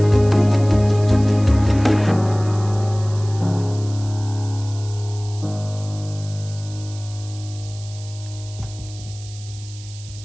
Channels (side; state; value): right; noise; hiss, 18 dB below the sound